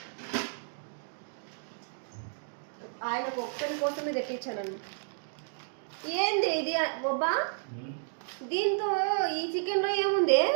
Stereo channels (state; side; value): silent; left; digital silence